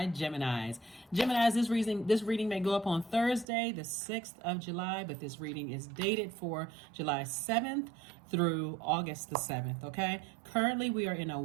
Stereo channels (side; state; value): left; drops out; at 3.5 s